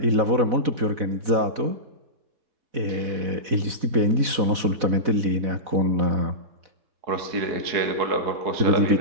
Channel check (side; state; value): left; late; 4.1 ms